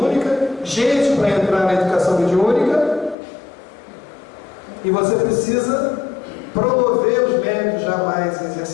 gente para entrar na educação mediúnica, e você precisa promover os médios já mais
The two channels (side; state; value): right; drops out; at 3.2 s